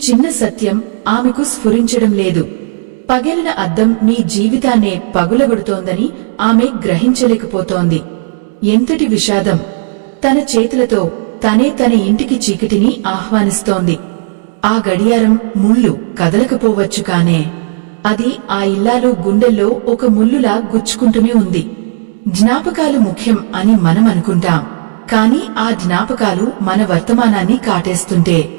చిన్న సత్యం ఆమెకు స్ఫురించడం లేదు. పగిలిన అద్దం మీ జీవితాన్నే పగులగొడుతోందని ఆమె గ్రహించలేకపోతోంది. ఎంతటి విషాదం! తన చేతులతో తనే తన ఇంటికి చీకటిని ఆహ్వానిస్తోంది. ఆ గడియారం ముళ్ళు కదలకపోవచ్చు కానే అది ఆ ఇల్లాలు గుండెల్లో ఒక ముల్లులా గుచ్చుకుంటూనే ఉంది. జ్ఞాపకాలు ముఖ్యం అని మనం అనుకుంటాం. కాని ఆ జ్ఞాపకాలు మన వర్తమానాన్ని కాటేస్తుంటే,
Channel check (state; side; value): silent; left; digital silence